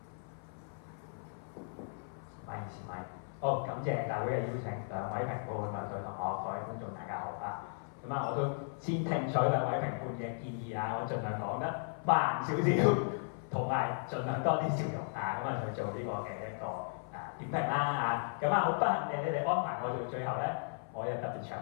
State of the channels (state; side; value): silent; right; 54 dB below the other